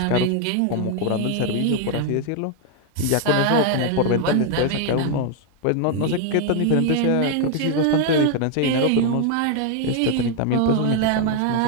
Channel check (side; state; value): both; different; correlation 0.00